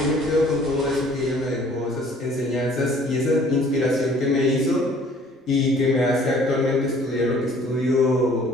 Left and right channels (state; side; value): normal; both; correlation 0.55